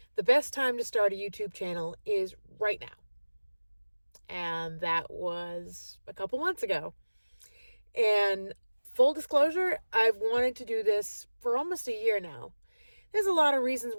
the best time to start a YouTube channel is right now. And that was a couple months ago. And full disclosure, I've wanted to do this for almost a year now. There's a lot of reasons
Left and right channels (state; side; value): inverted; both; correlation -1.00